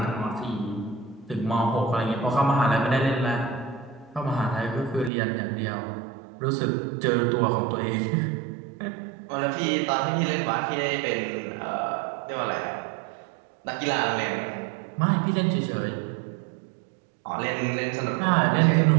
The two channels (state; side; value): drops out; left; at 5.1 s